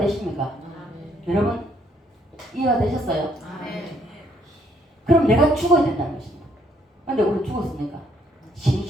여러분 이해가 되셨어요? 그럼 내가 죽어야 된다는 것입니다. 그런데 우리 죽었으니까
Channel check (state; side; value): normal; both; correlation 0.68